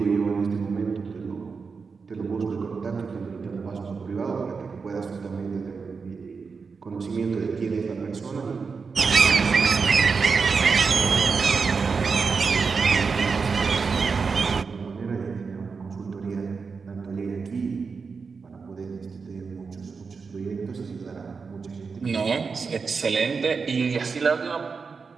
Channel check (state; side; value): quieter; left; 5.1 dB